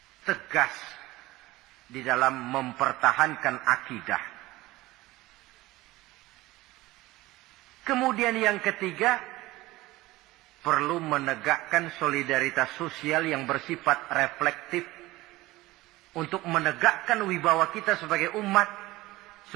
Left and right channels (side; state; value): left; quieter; 18.8 dB